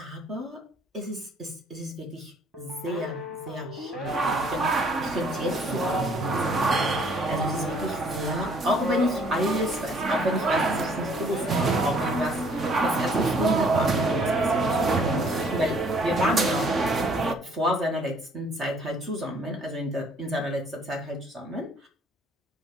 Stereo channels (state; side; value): normal; both; correlation 0.59